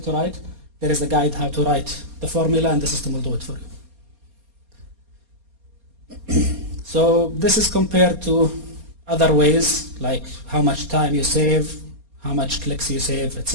to write. There is a guide how to write the formula and the system will do it for you. So this is compared to other ways, like how much time you save, how much clicks you save,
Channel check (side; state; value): left; late; 4.2 ms